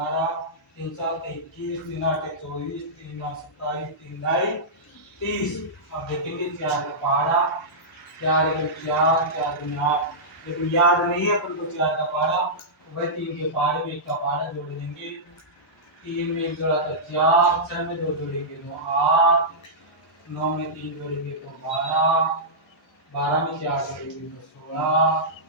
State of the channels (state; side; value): normal; both; correlation -0.14